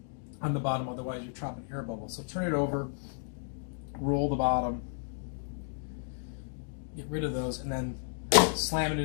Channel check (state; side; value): silent; right; digital silence